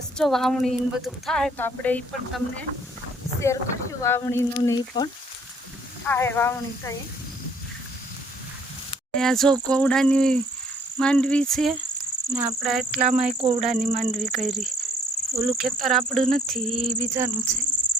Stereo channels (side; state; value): both; normal; correlation 0.62